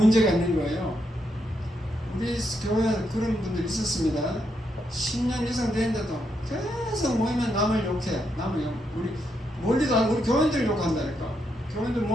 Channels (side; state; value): both; normal; correlation 0.80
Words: 있는 거예요. 우리 교회에 그런 분들 있었습니다. 10년 이상 되는데도 계속 모이면 남을 욕해. 남을 욕. 우리 멀리도 안, 우리 교인들 욕한다니까. 교인들